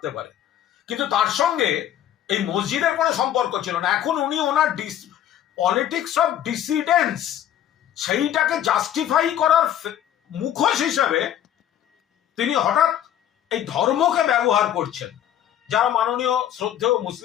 পারে, কিন্তু তার সঙ্গে এই মসজিদের কোনো সম্পর্ক ছিল না। এখন উনি ওনার পলিটিক্স অফ ডিসিডেন্স সেইটাকে জাস্টিফাই করার মুখোশ হিসাবে তিনি হঠাৎ এই ধর্মকে ব্যবহার করছেন। যারা মাননীয় শ্রদ্ধেয়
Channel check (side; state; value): right; quieter; 10.9 dB